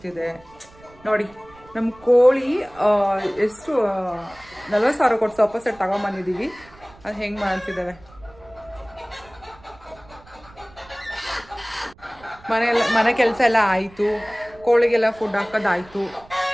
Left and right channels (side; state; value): right; noise; rumble, 25 dB below the sound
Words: ನೋಡಿ ನಮ್ಮ ಕೋಳಿ ಎಷ್ಟು 40,000 ಕೊಟ್ಟು ಸೋಫಾ ಸೆಟ್ ತಗೊಂಬಂದಿದೀವಿ ಅದು ಹೆಂಗ್ ಮಾಡ್ತಿದ್ದಾವೆ ಮನೆ ಕೆಲಸ ಎಲ್ಲ ಆಯ್ತು ಕೋಳಿಗೆಲ್ಲ ಫುಡ್ ಹಾಕೋದಾಯ್ತು